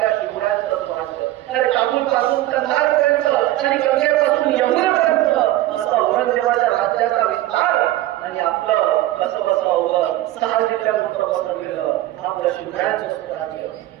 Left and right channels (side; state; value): left; quieter; 15.2 dB